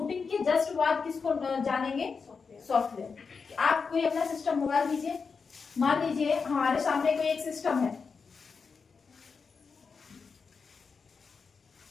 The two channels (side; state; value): right; quieter; 5.2 dB